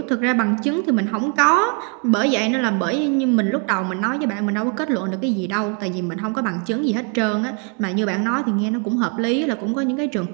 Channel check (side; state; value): left; quieter; 37.3 dB